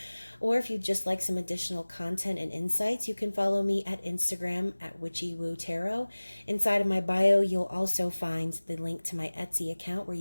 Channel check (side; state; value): both; inverted; correlation -1.00